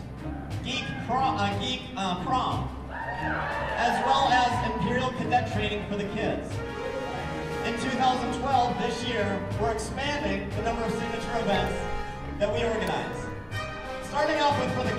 Geek Prom, as well as Imperial Cadet Training for the kids. In 2012, this year, we're expanding the number of signature events that we organize. Starting off with for the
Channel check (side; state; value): both; identical; correlation 1.00